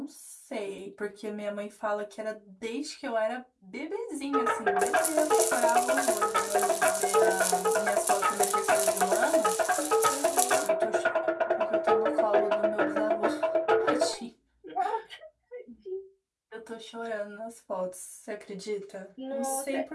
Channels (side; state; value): both; identical; correlation 1.00